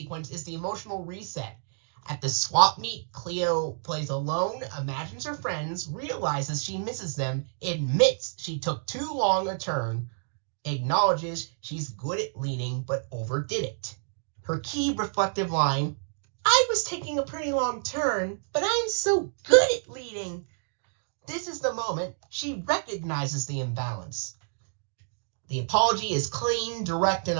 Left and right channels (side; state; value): left; silent; digital silence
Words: is the emotional reset. At the swap meet, Cleo plays alone, imagines her friends, realizes she misses them, admits she took too long a turn, acknowledges she's good at leading but overdid it. Her key reflective line, "I was taking a pretty long turn, but I'm so good at leading." This is the moment she recognizes the imbalance. The apology is clean, direct, and